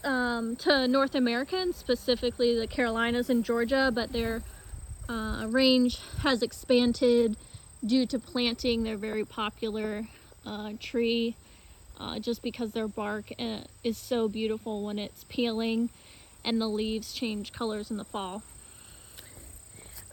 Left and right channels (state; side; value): identical; both; correlation 1.00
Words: to North America, and specifically the Carolinas and Georgia, but their range has expanded due to planting. They're a very popular tree just because their bark is so beautiful when it's peeling and the leaves change colors in the fall.